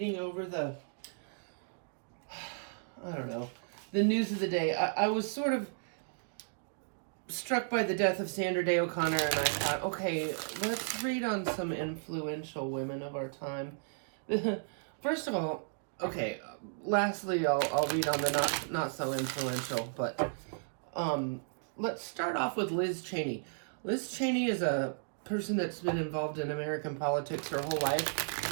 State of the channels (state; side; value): silent; left; digital silence